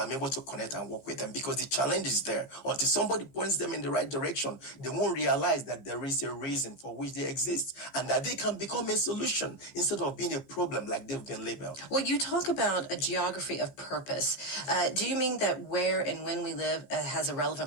able to connect and work with them because the challenge is there. Until somebody points them in the right direction, they won't realize that there is a reason for which they exist and that they can become a solution instead of being a problem like they've been labeled. Well, you talk about a geography of purpose. Do you mean that where and when we live has a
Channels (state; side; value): late; right; 15 ms